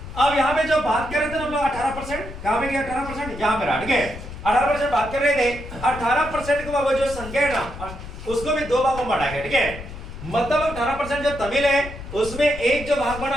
अब यहाँ पे जो बात कर रहे थे हम लोग 18%, कहाँ पे गया 18%, यहाँ पे रहा, ठीक है। 18% बात कर रहे थे, 18% को वो जो संख्या है ना उसको भी दो भागों में बांटा गया, ठीक है। मतलब 18% जो तमिल है उसमें एक जो भाग बना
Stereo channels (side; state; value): left; noise; rumble, 12 dB below the sound